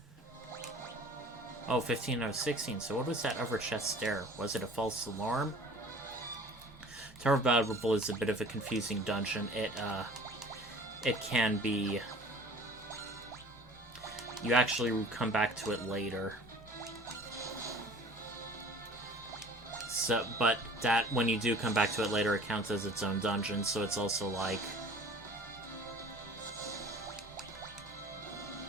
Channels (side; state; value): both; normal; correlation 0.46